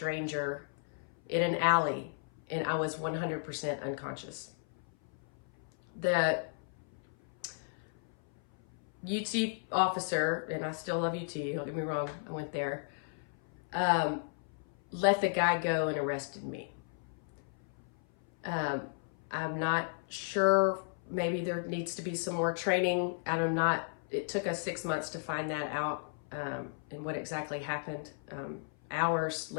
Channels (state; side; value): silent; right; 55 dB below the other